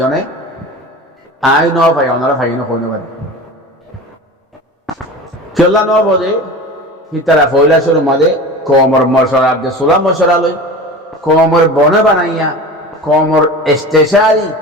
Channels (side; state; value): both; normal; correlation 0.34